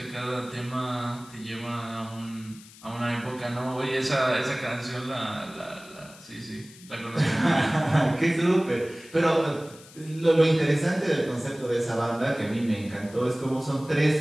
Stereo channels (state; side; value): noise; left; hiss, 21 dB below the sound